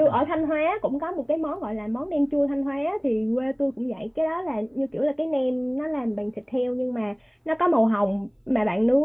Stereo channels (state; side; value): identical; both; correlation 1.00